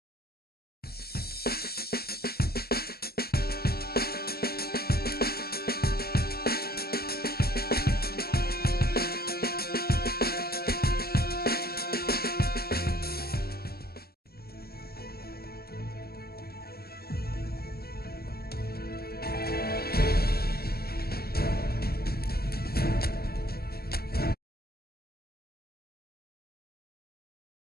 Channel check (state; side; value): late; right; 0.45 ms